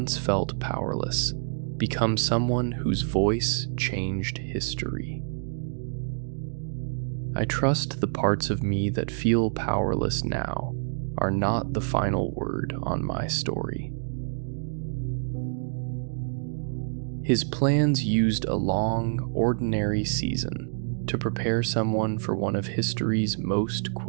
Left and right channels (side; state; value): left; silent; digital silence